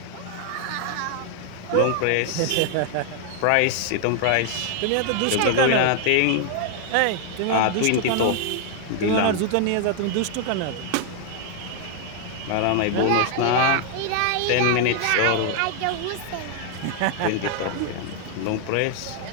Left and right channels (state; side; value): different; both; correlation 0.00